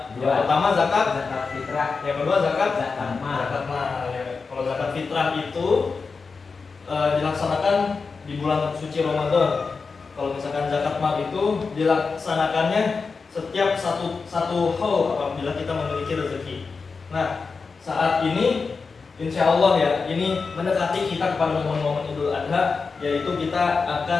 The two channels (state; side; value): quieter; right; 4.7 dB